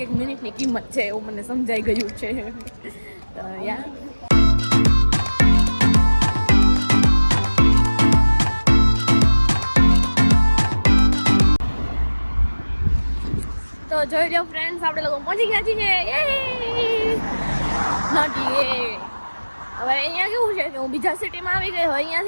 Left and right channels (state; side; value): inverted; both; correlation -1.00